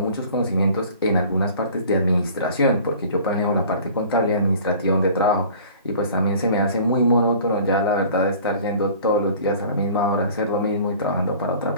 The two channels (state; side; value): inverted; both; correlation -0.47